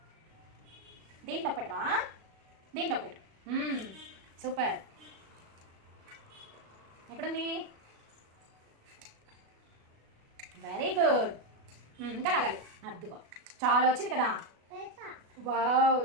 దీంట్లో పెట్టవా? దీంట్లో పెట్టు. సూపర్. ఎక్కడుంది? Very good. ఇంకా లాగాలి. అద్దుకో, చాలా వచ్చింది కదా. Wow,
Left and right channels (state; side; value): late; left; 37 ms